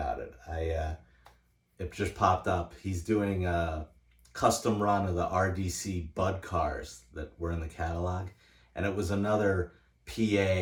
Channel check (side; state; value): both; identical; correlation 1.00